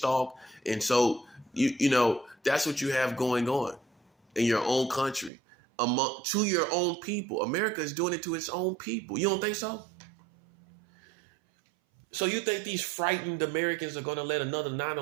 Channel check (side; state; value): left; drops out; at 5.3 s